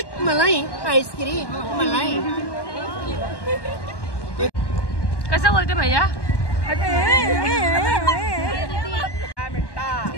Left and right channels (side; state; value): right; late; 1.1 ms